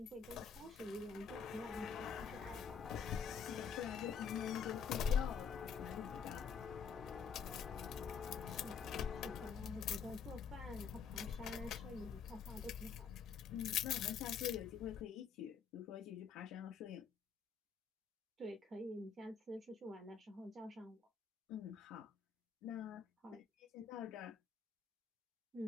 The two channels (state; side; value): quieter; right; 6.7 dB